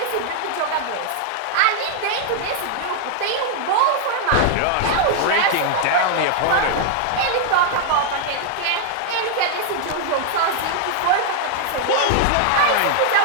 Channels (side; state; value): both; different; correlation 0.00